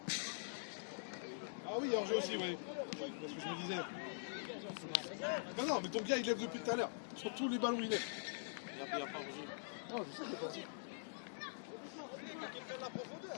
Ah oui, hors-jeu aussi, oui. C'est ce que je me disais. Non, non, mais ton gars, il lève depuis tout à l'heure. Sur tous les ballons, il lève. Il n'y a pas hors-jeu. Non, je sais qu'il n'y a pas hors-jeu.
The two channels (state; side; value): silent; right; digital silence